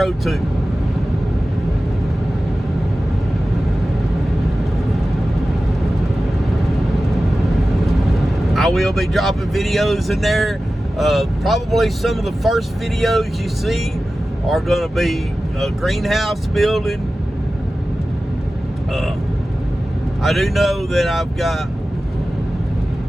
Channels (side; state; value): both; normal; correlation 0.95